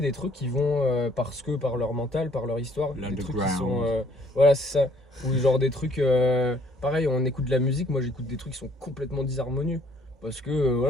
trucs qui vont, parce que par leur mental, par leur histoire, des trucs qui sont. Voilà, c'est ça. Ou genre des trucs. Pareil, on écoute de la musique, moi j'écoute des trucs qui sont complètement disharmonieux. Parce que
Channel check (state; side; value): normal; both; correlation 0.62